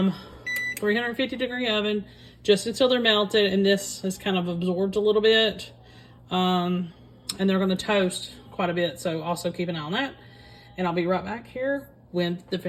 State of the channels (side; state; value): both; identical; correlation 1.00